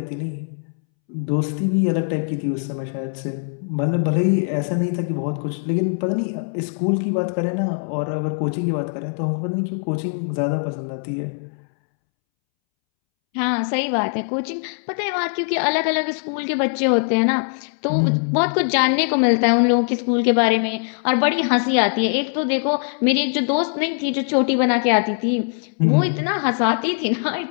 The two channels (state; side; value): silent; right; 65 dB below the other